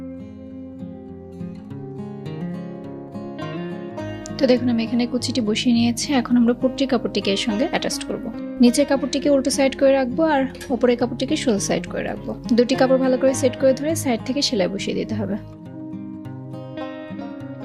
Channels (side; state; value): both; identical; correlation 1.00